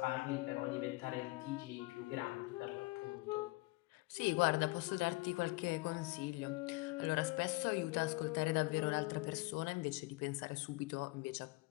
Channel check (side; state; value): right; quieter; 23.4 dB